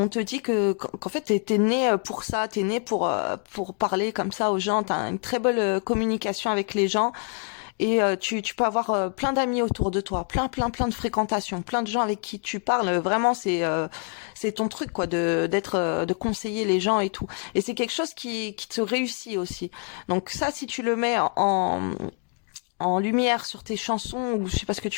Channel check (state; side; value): quieter; right; 38.8 dB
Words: te dit qu'en fait t'es né pour ça, t'es né pour parler comme ça aux gens. T'as une très belle communication avec les gens et tu peux avoir plein d'amis autour de toi, plein de fréquentations, plein de gens avec qui tu parles. Vraiment, c'est ton truc quoi, de conseiller les gens et tout. Et c'est quelque chose qui te réussit aussi. Donc ça, si tu le mets en lumière sur tes chansons ou je sais pas ce que